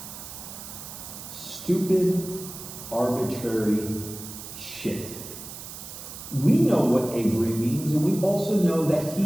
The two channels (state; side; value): noise; right; hiss, 12 dB below the sound